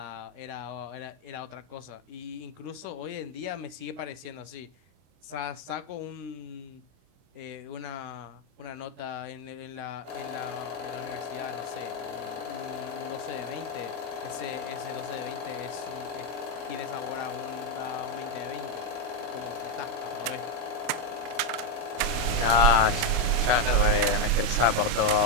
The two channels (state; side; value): late; left; 27 ms